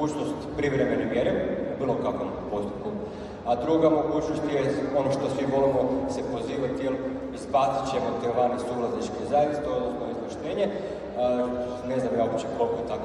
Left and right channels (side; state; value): both; identical; correlation 1.00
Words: privremene mjere u bilo kakvom postupku, a druga mogućnost je ono što svi volimo se pozivati, jer izbacit ćemo te vani suvlasničke zajednice, odnosno izvlaštenje. Ne znam ja uopće koliko je